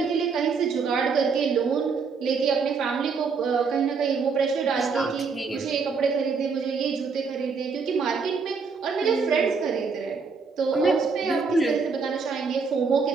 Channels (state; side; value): quieter; left; 5.1 dB